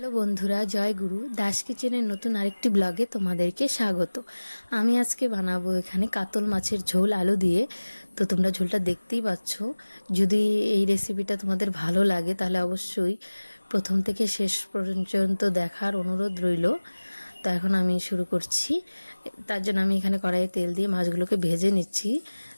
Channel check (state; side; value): inverted; both; correlation -1.00